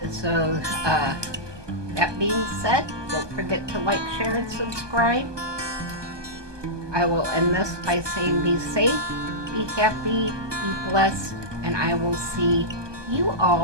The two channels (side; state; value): left; late; 1.2 ms